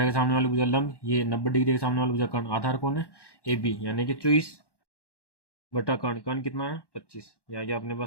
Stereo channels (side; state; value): right; late; 1.1 ms